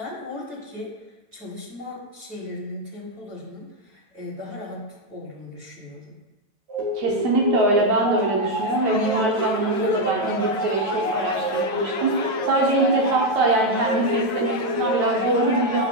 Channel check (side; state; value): left; late; 9.1 ms